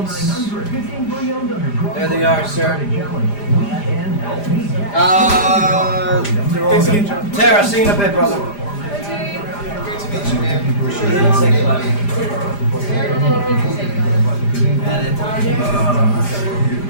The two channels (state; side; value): late; right; 5.0 ms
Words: 15 pre-owned under There they are, sir. They're all good. Tara, see you in a bit, brother.